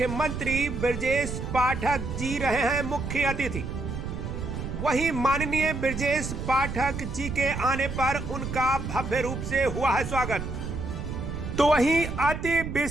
ब्रजेश पाठक जी रहे हैं मुख्य अतिथि। वहीं माननीय ब्रजेश पाठक जी के आने पर उनका भव्य रूप से हुआ है स्वागत। तो वहीं अति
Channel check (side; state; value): right; noise; rumble, 6 dB below the sound